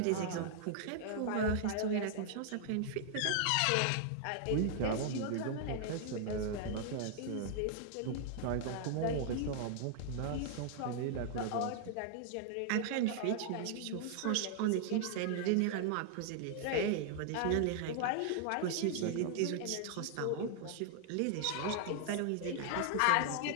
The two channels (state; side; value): different; both; correlation 0.00